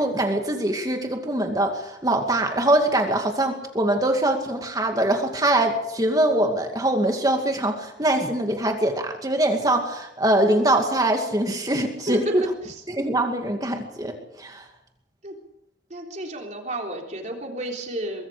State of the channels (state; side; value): normal; both; correlation 0.49